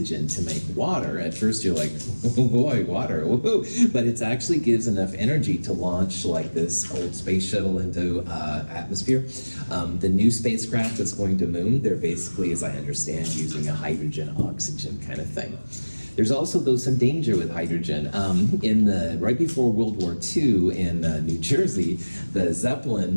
to make water, at first you're like, oh boy, water, woohoo. But it actually gives enough energy to launch like this old space shuttle into atmosphere. The new spacecraft that's going to moon, they're basically, as I understand, using a hydrogen-oxygen kind of thing. There's also, though, some danger with hydrogen. Right before World War II in New Jersey, the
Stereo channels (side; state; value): both; inverted; correlation -1.00